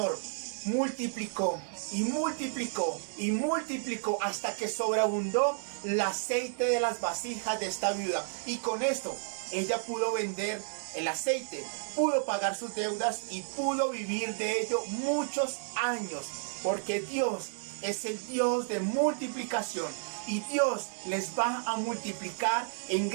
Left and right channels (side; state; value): left; silent; digital silence